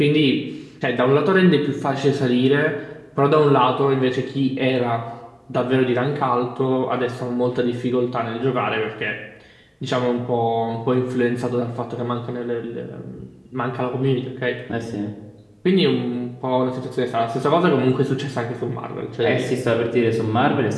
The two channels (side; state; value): both; identical; correlation 1.00